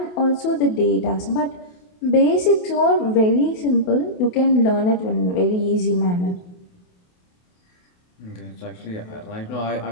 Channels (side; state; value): right; late; 28 ms